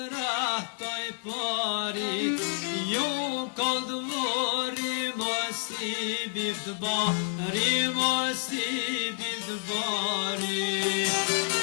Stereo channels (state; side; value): silent; right; 59 dB below the other